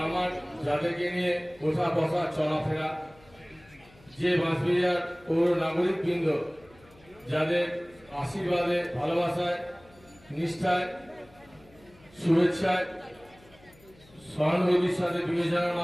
আমার যাদেরকে নিয়ে ওঠা বসা চলাফেরা, যে বাঁশবেড়িয়ার পৌর নাগরিকবৃন্দ যাদের আশীর্বাদে, ভালোবাসায়, নিষ্ঠায়, শুভেচ্ছায়, সহানুভূতির সাথে বিবেচনার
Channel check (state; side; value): noise; left; hum, 27 dB below the sound